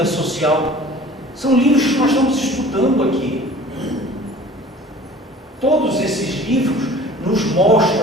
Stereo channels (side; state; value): both; normal; correlation 0.46